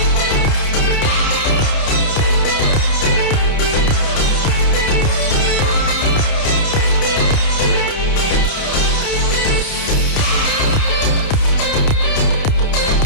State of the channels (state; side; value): late; right; 29 ms